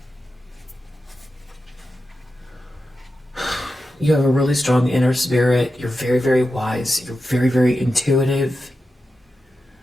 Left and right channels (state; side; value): normal; both; correlation 0.90